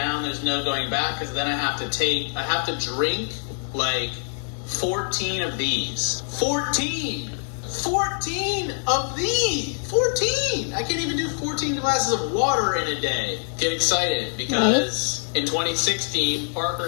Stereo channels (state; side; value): silent; right; 62 dB below the other